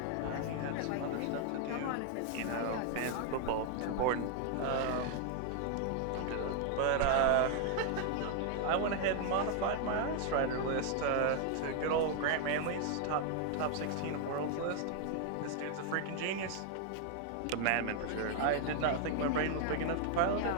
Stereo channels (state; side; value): different; both; correlation 0.00